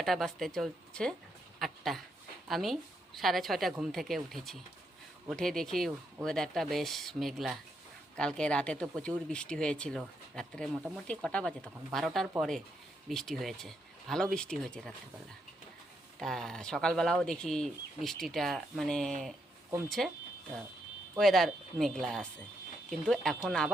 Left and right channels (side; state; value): both; normal; correlation 0.79